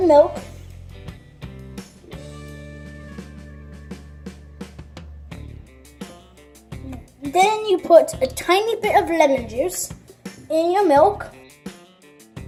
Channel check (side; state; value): both; identical; correlation 1.00